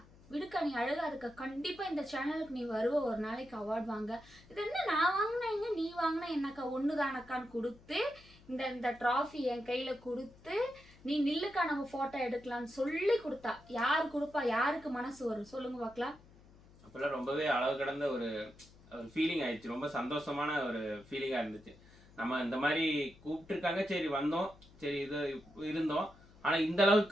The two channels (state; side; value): noise; left; hum, 24 dB below the sound